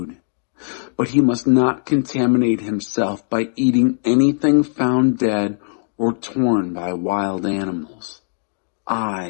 But he must not contaminate himself by eating anything found dead or torn by wild animals.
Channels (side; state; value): right; silent; digital silence